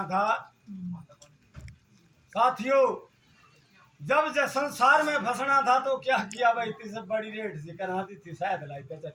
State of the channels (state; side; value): identical; both; correlation 1.00